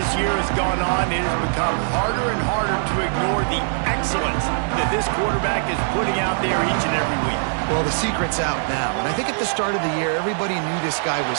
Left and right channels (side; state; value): left; silent; digital silence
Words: year has gone on, it has become harder and harder to ignore the excellence that this quarterback is putting out there each and every week. Well, the secret's out now, and I think at the start of the year, everybody knew this guy